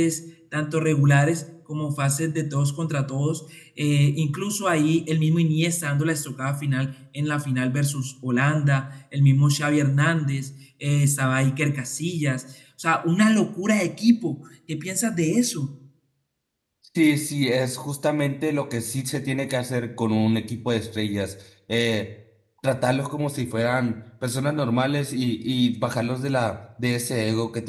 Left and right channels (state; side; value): identical; both; correlation 1.00